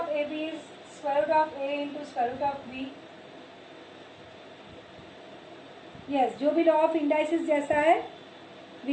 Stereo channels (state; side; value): identical; both; correlation 1.00